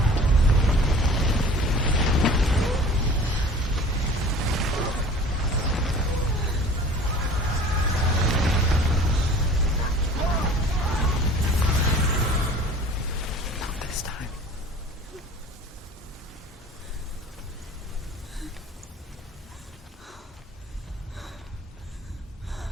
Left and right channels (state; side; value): normal; both; correlation 0.45